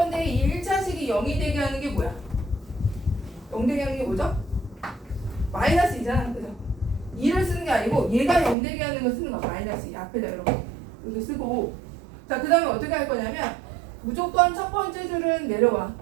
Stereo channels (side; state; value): left; drops out; at 8.6 s